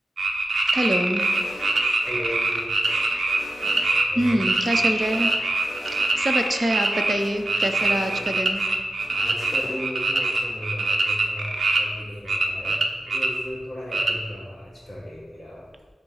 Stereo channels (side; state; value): both; normal; correlation 0.91